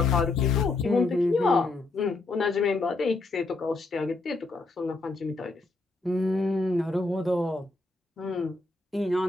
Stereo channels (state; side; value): quieter; right; 3.3 dB